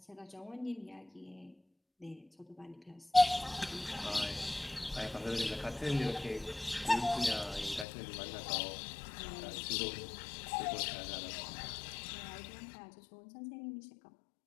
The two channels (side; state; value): right; drops out; at 7.9 s